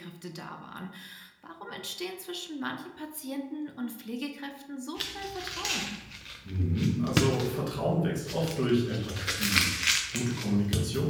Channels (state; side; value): identical; both; correlation 1.00